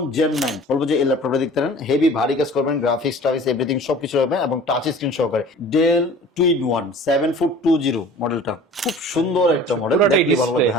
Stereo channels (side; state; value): both; normal; correlation 0.44